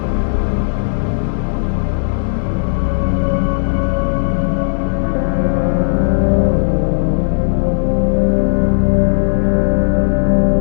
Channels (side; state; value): right; silent; digital silence